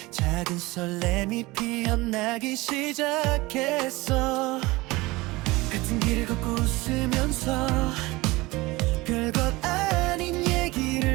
작은 설렘이 피어나기 시작했어. 같은 길을 걷고 웃으면서 별것 아닌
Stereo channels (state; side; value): quieter; left; 21.5 dB